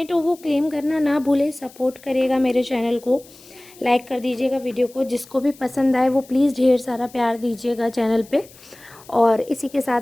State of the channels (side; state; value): left; noise; hiss, 23 dB below the sound